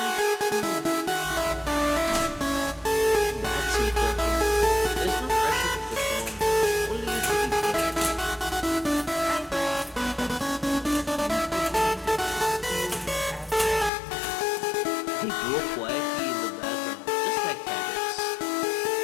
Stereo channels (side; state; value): right; drops out; at 13.9 s